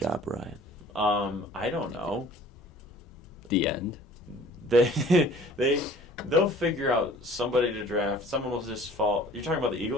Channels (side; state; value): both; normal; correlation 0.50